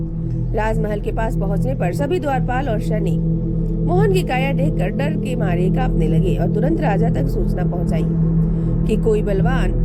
राजमहल के पास पहुंचने पर सभी द्वारपाल और सैनिक मोहन की काया देखकर डर के मारे कांपने लगे और तुरंत राजा तक सूचना पहुंचाई कि कोई बलवान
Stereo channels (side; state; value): both; identical; correlation 1.00